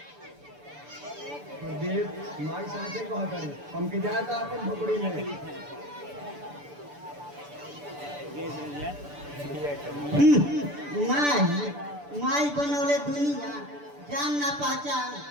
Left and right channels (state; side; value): late; left; 6.9 ms